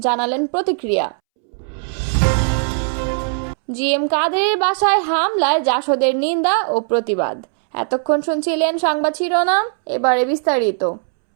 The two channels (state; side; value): silent; left; 67 dB below the other